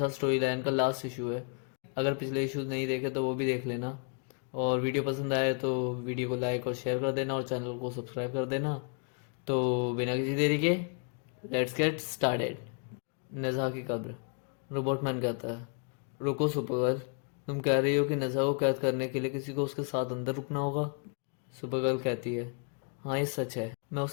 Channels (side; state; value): right; quieter; 39.3 dB